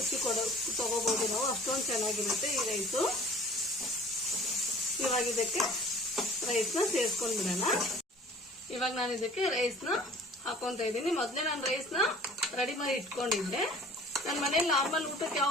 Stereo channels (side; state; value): both; normal; correlation 0.48